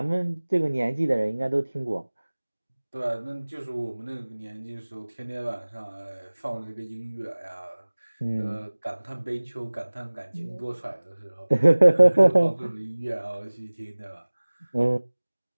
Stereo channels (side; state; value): both; inverted; correlation -1.00